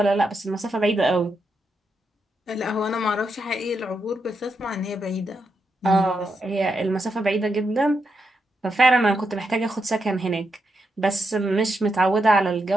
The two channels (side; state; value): both; normal; correlation 0.83